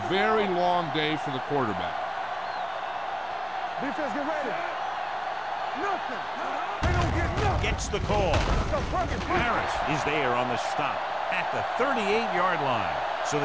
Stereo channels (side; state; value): both; identical; correlation 1.00